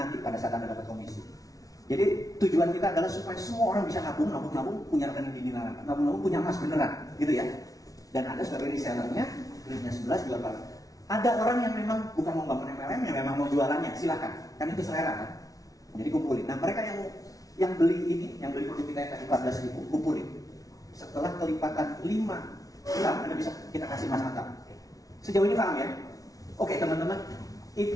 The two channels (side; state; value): right; late; 0.18 ms